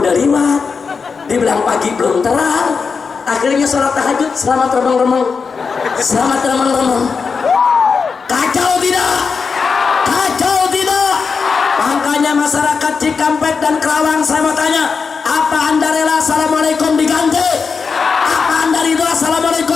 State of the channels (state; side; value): quieter; right; 5.3 dB